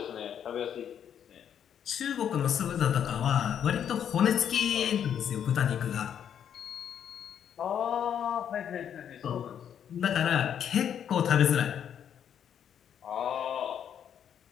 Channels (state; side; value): quieter; right; 8.9 dB